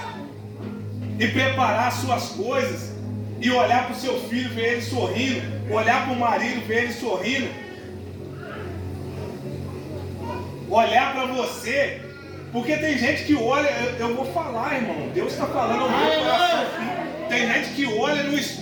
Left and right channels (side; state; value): both; identical; correlation 1.00